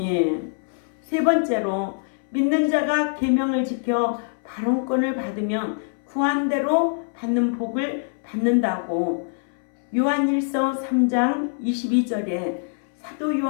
세 번째로 믿는 자가 계명을 지켜 발언권을 받으면 구한 대로 받는 복을 받는다고 요한일서 3장 22절에 사도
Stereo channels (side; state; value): right; silent; 63 dB below the other